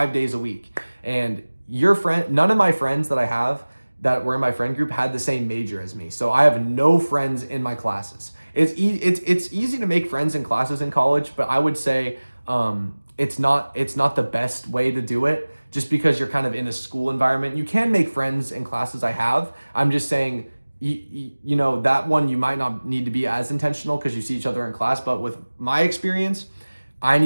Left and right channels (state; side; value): inverted; both; correlation -1.00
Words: days a week. And none of my friends that I have that were in my friend group had the same major as me. So I have no friends in my classes. It's easy to make friends in classes in college, but I would say it's not the best way to do it just because you're kind of in a school environment. You can make friends in classes I have. I'm just saying, that one you might not need to be as intentional because you see each other in class. But with my experience, I